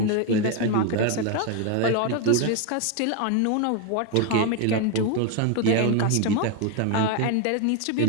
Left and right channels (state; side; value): different; both; correlation 0.01